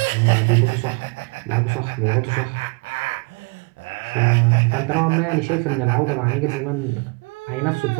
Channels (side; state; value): left; quieter; 30.4 dB